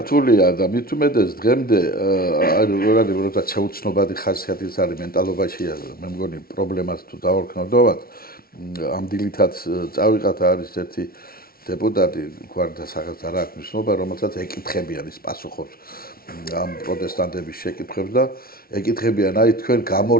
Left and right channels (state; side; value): late; right; 0.43 ms